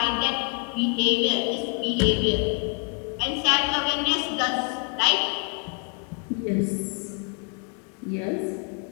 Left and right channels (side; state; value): right; quieter; 40.0 dB